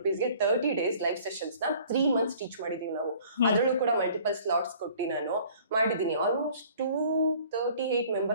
30 ಡೇಸ್ ಲೈವ್ ಸೆಷನ್ಸ್ ನ 3 ಮಂತ್ಸ್ ಟೀಚ್ ಮಾಡಿದೀವಿ ನಾವು. ಅದ್ರಲ್ಲೂ ಕೂಡ ಮಲ್ಟಿಪಲ್ ಸ್ಲಾಟ್ಸ್ ಕೊಟ್ಟು ನಾನು ಮಾಡಿದೀನಿ. ಆಲ್ಮೋಸ್ಟ್ 238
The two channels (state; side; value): inverted; both; correlation -0.53